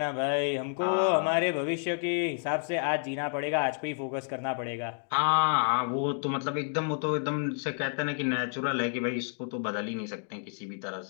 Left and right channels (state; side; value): silent; right; 58 dB below the other